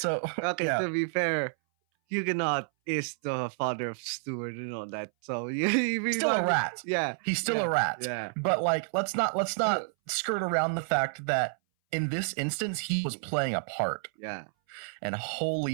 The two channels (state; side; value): silent; left; 58 dB below the other